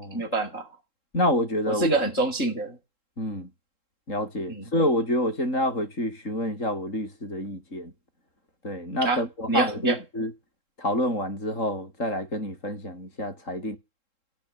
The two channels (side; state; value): right; late; 3.7 ms